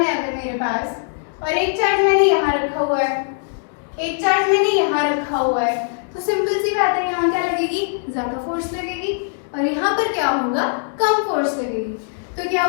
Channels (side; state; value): right; silent; digital silence